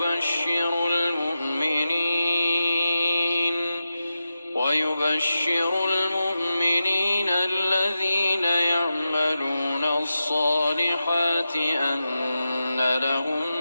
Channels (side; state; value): both; inverted; correlation -0.90